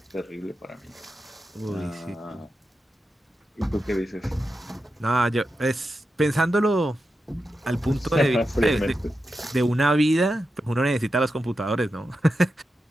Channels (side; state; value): both; normal; correlation 0.89